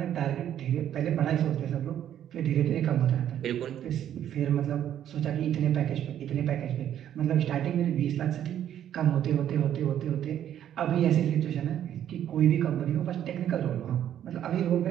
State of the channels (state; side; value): quieter; left; 10.6 dB